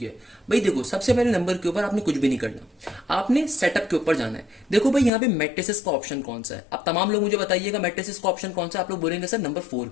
भाई देखो, सबसे पहले नंबर के ऊपर आपने कुछ भी नहीं करना, आपने सेटअप के ऊपर जाना है। देखो भाई, यहाँ पे मैट्रिसेस का ऑप्शन कौन सा है? अब तमाम लोग मुझे बताइएगा मैट्रिसेस का ऑप्शन कौन सा है। आप लोग बोलेंगे सर नंबर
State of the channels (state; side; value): drops out; right; at 5.1 s